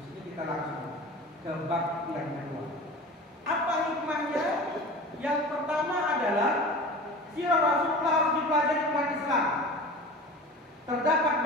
ini kita langsung ke bab yang kedua. Apa hikmahnya? Yang pertama adalah sirah Rasulullah harus dipelajari umat Islam. Terdapat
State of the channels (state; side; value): normal; both; correlation 0.36